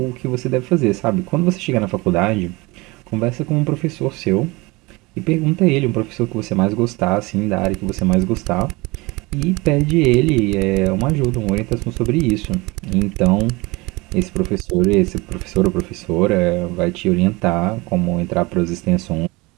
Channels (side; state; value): left; quieter; 23.7 dB